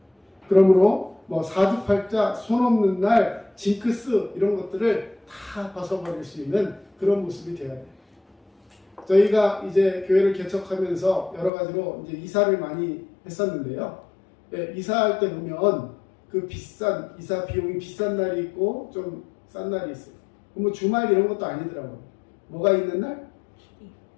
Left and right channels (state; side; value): drops out; right; at 11.5 s